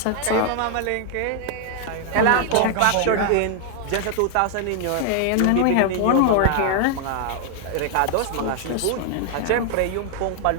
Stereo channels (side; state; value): both; different; correlation 0.00